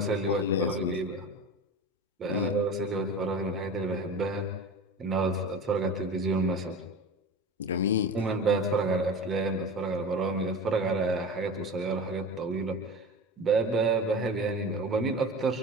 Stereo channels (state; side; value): normal; both; correlation 0.31